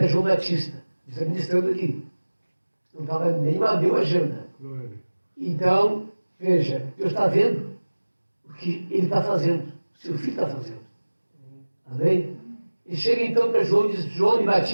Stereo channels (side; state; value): both; inverted; correlation -1.00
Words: João Batista, está ministrando aqui. Não estava nem bateu a agenda. Glória. Então, veja, Deus está vendo o que ele está fazendo, o seu filho está fazendo. Amém? E chega então para João e diz, João me